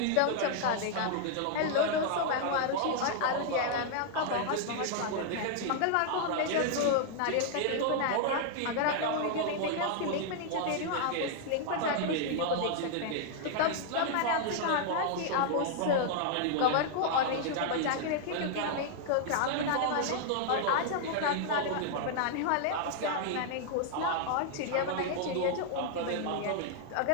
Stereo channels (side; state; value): both; different; correlation -0.01